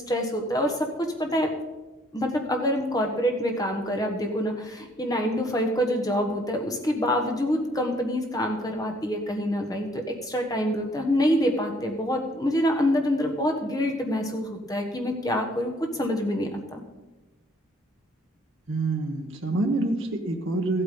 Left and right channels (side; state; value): both; normal; correlation 0.63